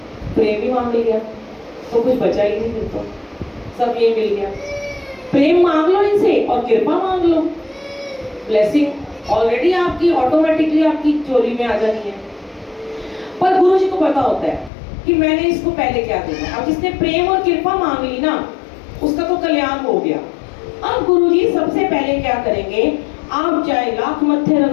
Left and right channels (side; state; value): right; drops out; at 14.7 s